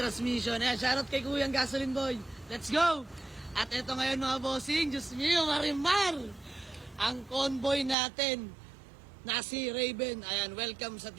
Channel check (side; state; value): left; drops out; at 8.0 s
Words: Ayan, shoutout kay Kuyang Gasoline Boy. Let's go! At ito ngayon mga bossing, Diyos mio, Marimar! Ang convoy natin na si Raven. Ayan, welcome sa